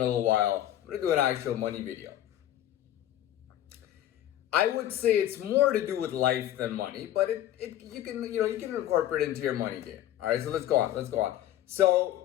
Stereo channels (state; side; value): quieter; right; 12.6 dB